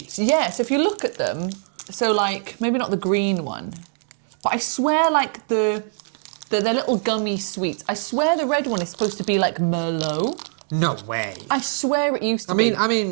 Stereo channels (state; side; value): silent; left; digital silence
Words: Yeah, so if you look at them... So, like, maybe not the green one, but I swear, like, they're little gummy sweets. I swear the red one is supposed to be, like, Merlot. No way. I swear it used to be. I